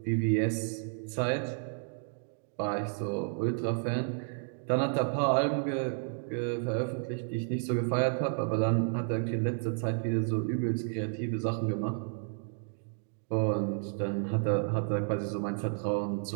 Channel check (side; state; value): left; silent; digital silence